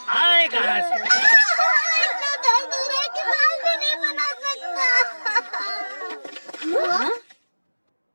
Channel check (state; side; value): inverted; both; correlation -1.00